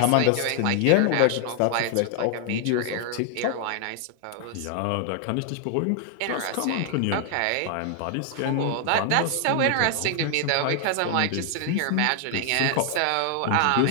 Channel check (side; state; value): both; different; correlation 0.00